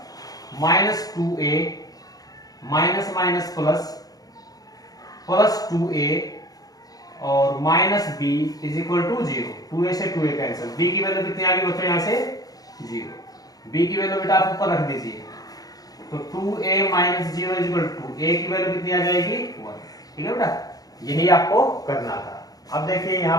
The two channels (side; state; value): right; late; 0.18 ms